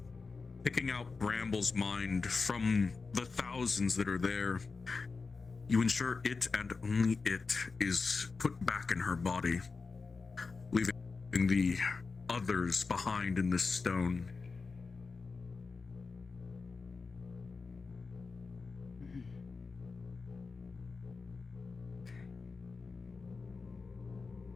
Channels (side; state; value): right; quieter; 4.4 dB